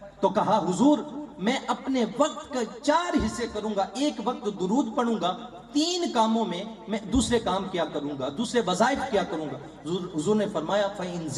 تو کہا حضور میں اپنے وقت کا 4 حصے کروں گا، ایک وقت درود پڑھوں گا، 3 کاموں میں میں دوسرے کام کیا کروں گا، دوسرے وظائف کیا کروں گا۔ حضور نے فرمایا فَإِن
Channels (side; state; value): both; identical; correlation 1.00